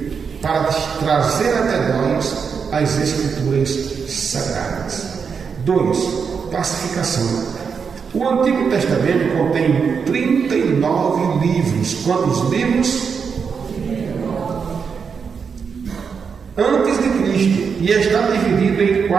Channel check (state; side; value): quieter; left; 6.1 dB